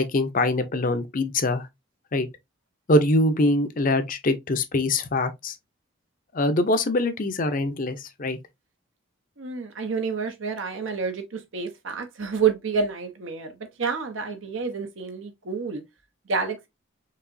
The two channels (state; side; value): normal; both; correlation 0.27